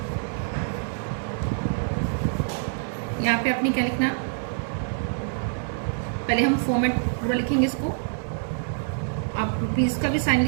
यहाँ पे अपनी क्या लिखना? पहले हम फॉर्मेट पूरा लिखेंगे इसको। आप रुपीज का भी साइन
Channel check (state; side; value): silent; left; digital silence